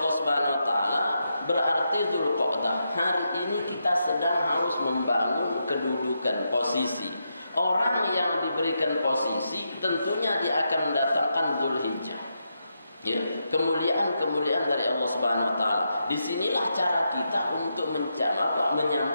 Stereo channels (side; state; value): both; inverted; correlation -0.84